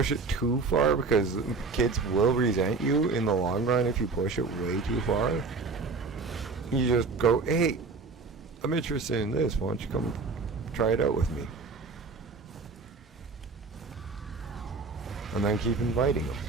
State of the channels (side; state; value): left; quieter; 4.2 dB